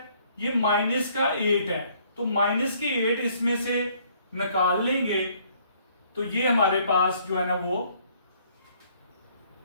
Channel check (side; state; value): both; inverted; correlation -0.63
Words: ये माइनस का 8 है, तो माइनस के 8 इसमें से निकाल लेंगे तो ये हमारे पास जो है ना वो